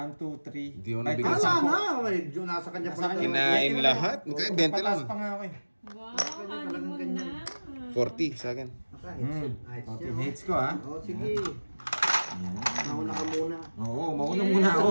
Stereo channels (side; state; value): both; inverted; correlation -1.00